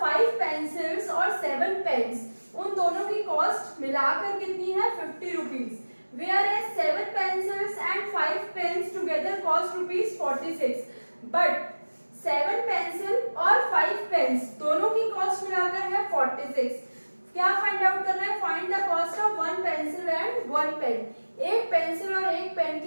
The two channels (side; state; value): both; inverted; correlation -1.00